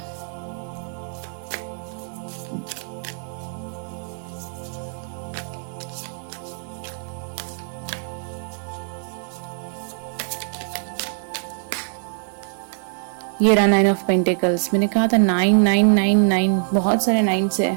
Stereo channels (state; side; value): silent; left; 63 dB below the other